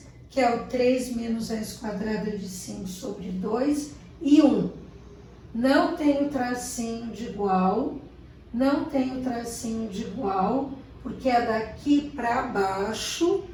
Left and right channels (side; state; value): both; identical; correlation 1.00